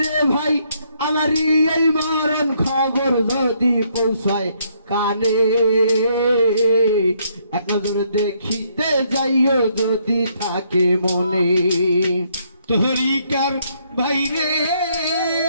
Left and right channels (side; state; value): both; inverted; correlation -0.71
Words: রে ভাই আমারই এই মরণ খবর যদি পৌঁছায় কানে এক নজর দেখিতে যাইও যদি থাকে মনে তরিকার ভাই রে